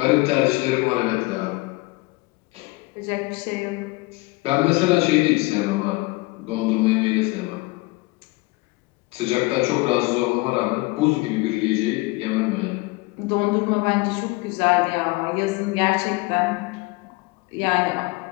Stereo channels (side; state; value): right; quieter; 23.7 dB